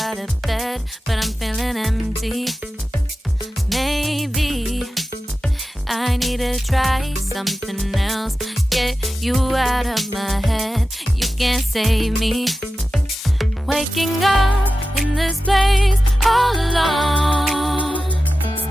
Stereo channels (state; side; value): normal; both; correlation 0.93